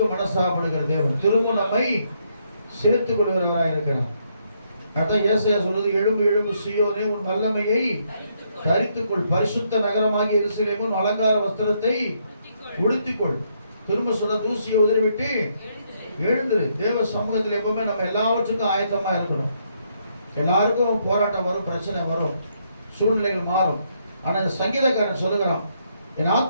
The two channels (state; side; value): inverted; both; correlation -0.74